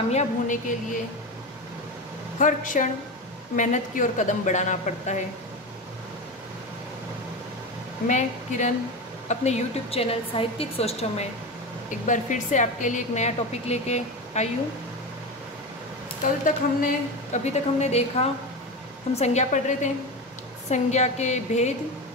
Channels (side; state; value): both; normal; correlation 0.21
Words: होने के लिए हर क्षण मेहनत की ओर कदम बढ़ाना पड़ता है। मैं किरण अपने YouTube चैनल साहित्यिक सोचों में एक बार फिर से आपके लिए एक नया टॉपिक लेके आई हूँ। अभी तक हमने देखा, हम संज्ञा पढ़ रहे थे। संज्ञा